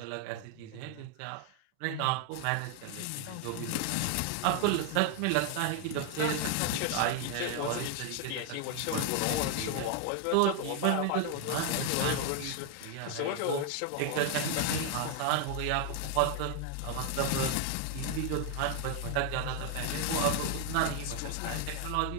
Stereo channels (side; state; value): both; different; correlation 0.00